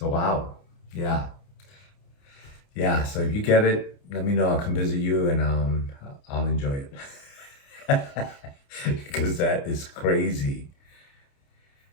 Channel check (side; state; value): right; late; 29 ms